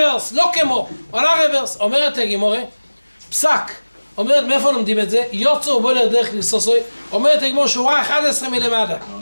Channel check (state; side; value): inverted; both; correlation -1.00